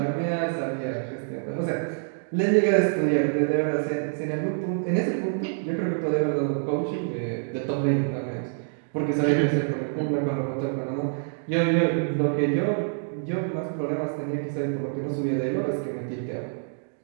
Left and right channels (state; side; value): silent; left; digital silence